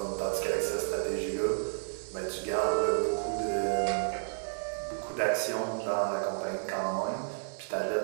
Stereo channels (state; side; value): silent; left; digital silence